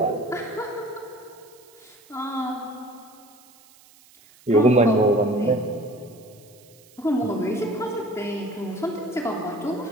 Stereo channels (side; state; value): right; noise; hiss, 26 dB below the sound